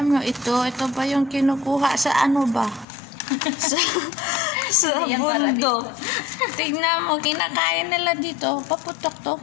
nyo ito ba yung kinukuha sa ano ba? sa Yan para bundok. Tignan mo, kinakain nila dito. Paputok to,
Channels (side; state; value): right; drops out; at 2.9 s